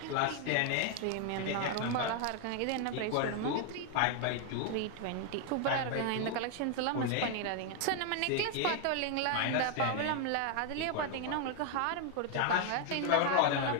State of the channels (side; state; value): both; different; correlation 0.01